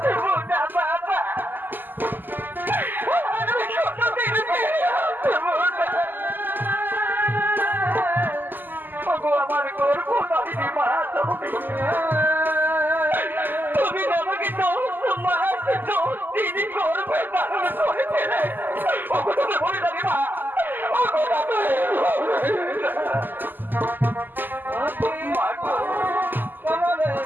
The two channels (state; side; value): late; left; 0.090 ms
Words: না বাবা। আমি কোনদিন ফিরে আসবো না। আমার গর্ভধারিণী মা তুমি আমাকে 10 মাস 10 দিন গর্ভে ধারণ করে ফেলে তুমি বলে যাবে মা